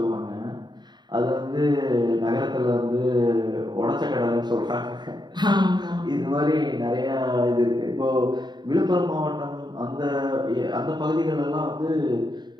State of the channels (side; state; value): left; late; 0.21 ms